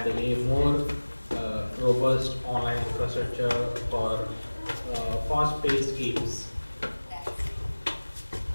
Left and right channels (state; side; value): inverted; both; correlation -1.00